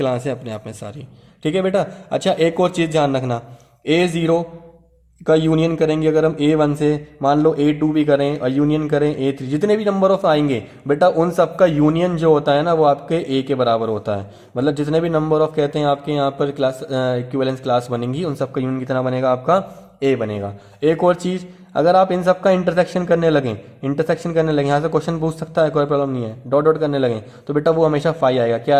है अपने आप में सारी, ठीक है बेटा। अच्छा एक और चीज़ ध्यान रखना, A0 का यूनियन करेंगे अगर हम A1 से, मान लो A2 भी करें और यूनियन करें A3, जितने भी नंबर ऑफ आएंगे बेटा उन सब का यूनियन जो होता है ना वो आपके A के बराबर होता है। मतलब जितने भी नंबर ऑफ कहते हैं आपके यहाँ पर क्लास इक्विवेलेंस क्लास बनेंगी, उन सब का यूनियन कितना बनेगा, आपका A बनेगा। एक और चीज़, अगर आप इन सब का इंटरसेक्शन करने लगें, यहाँ से क्वेश्चन पूछ सकता है, कोई प्रॉब्लम नहीं है, डॉट डॉट करने लगें, तो बेटा वो हमेशा 5 आएगा, क्या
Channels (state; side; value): identical; both; correlation 1.00